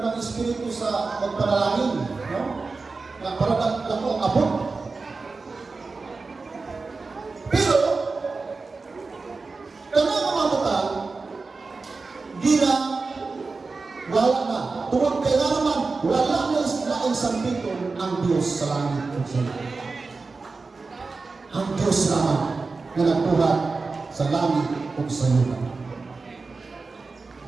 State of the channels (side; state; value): left; quieter; 4.1 dB